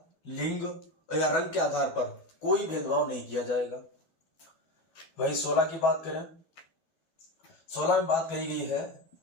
लिंग या रंग के आधार पर कोई भेदभाव नहीं किया जाएगा। वही 16 की बात करें, 16 में बात कही गई है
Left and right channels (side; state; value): right; late; 12 ms